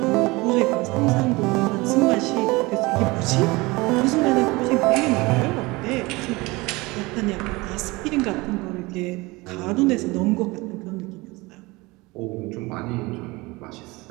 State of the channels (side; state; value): left; quieter; 23.0 dB